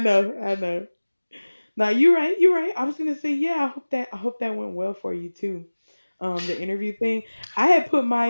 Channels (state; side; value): inverted; both; correlation -1.00